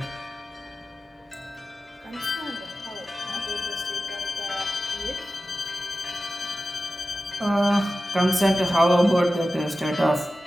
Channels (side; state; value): both; normal; correlation 0.94